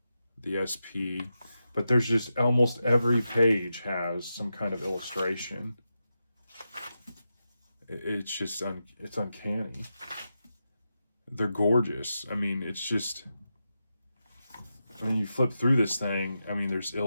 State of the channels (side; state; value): both; inverted; correlation -0.89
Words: the SP. But there's just almost every page has some kind of illustration. It's just, it's uncanny. They're gorgeous. I mean, it's just, I mean, you flip through this thing, I mean, there's